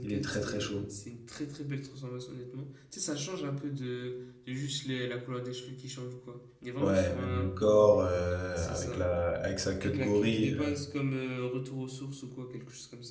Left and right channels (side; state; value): both; identical; correlation 1.00